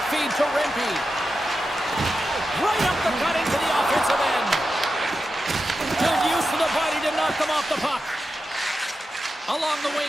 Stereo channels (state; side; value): normal; both; correlation 0.90